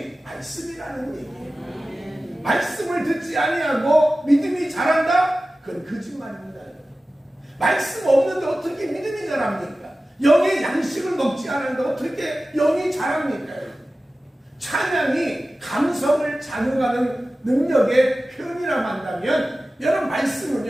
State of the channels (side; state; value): both; normal; correlation 0.95